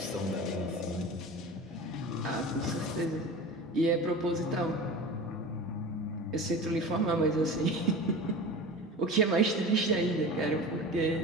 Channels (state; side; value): normal; both; correlation 0.33